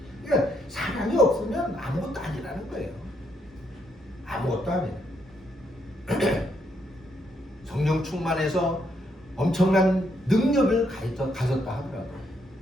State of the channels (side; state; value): both; normal; correlation 0.75